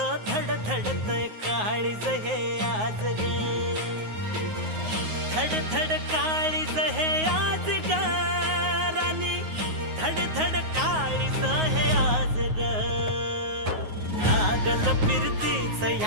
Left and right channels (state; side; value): late; left; 9.5 ms